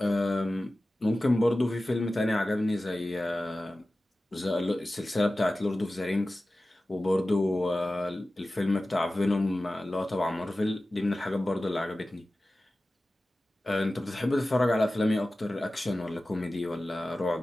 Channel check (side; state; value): both; normal; correlation 0.96